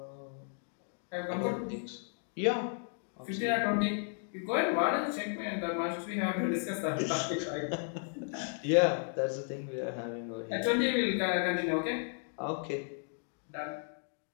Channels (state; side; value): silent; right; 55 dB below the other